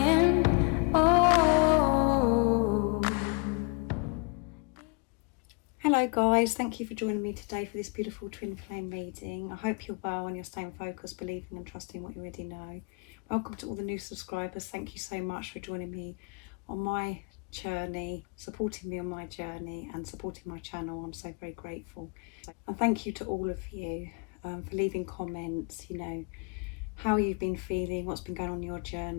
oh. Hello guys, thank you for joining me today for this beautiful twin flame reading. I hope you're well and you're staying focused, believing and trusting what you already know. Welcome to all the new subscribers. Thank you so much for joining me on my journey, supporting me on my journey and supporting my channel. I'm so very grateful. And thank you to all of you for leaving comments, how you've been feeling, what's been going on in your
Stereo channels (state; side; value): quieter; right; 33.7 dB